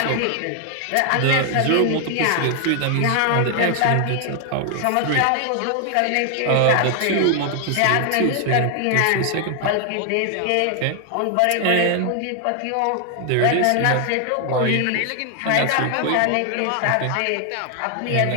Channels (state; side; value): different; both; correlation 0.00